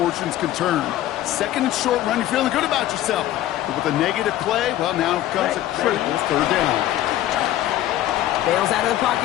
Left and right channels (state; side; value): quieter; right; 13.7 dB